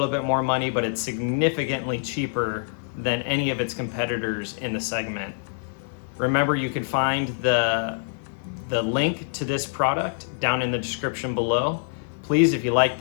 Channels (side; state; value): right; silent; 60 dB below the other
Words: bit more money, but it's significantly cheaper than any of its competitors in the segment. Remember, you can find the link to this product down in the description below. Please, if you like